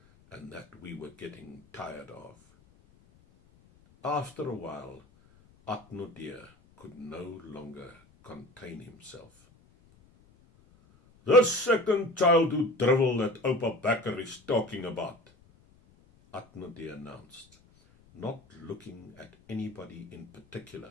and that we were getting tired of. After a while, Atnodé could no longer contain himself. The second childhood drivel that Oupa Bekker is talking about, Atnodé announced, not looking at anybody in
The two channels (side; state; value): left; noise; rumble, 29 dB below the sound